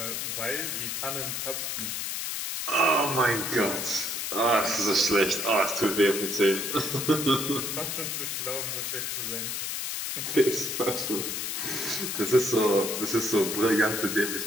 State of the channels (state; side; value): noise; left; hiss, 3 dB below the sound